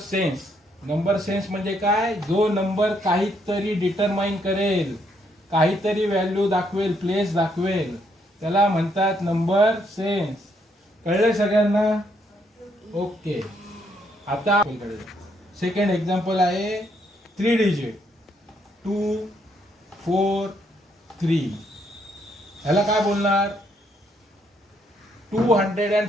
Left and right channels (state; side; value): normal; both; correlation 0.73